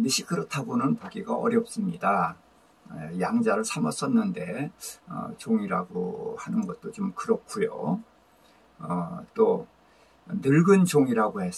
그렇다고는 보기가 어렵습니다. 양자를 삼았었는데 종이라고 하는 것도 좀 그렇고요. 또 늙은 종이라고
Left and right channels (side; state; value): both; identical; correlation 1.00